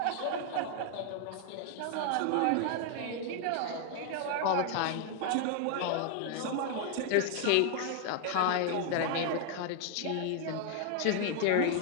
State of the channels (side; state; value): both; different; correlation 0.00